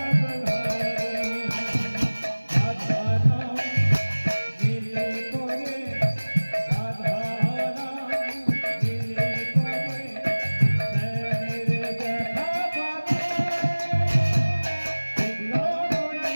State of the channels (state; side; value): inverted; both; correlation -1.00